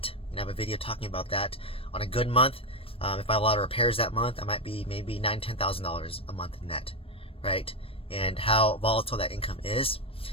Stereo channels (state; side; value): late; right; 0.27 ms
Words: I have a video talking about that. On a good month, if I have a lot of repairs that month, I might be maybe $9,000-$10,000 a month net, right? And how volatile that income is.